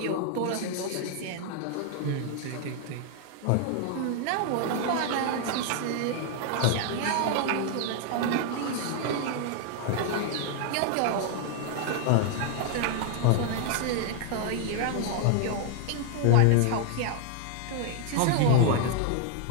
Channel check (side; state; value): both; different; correlation 0.00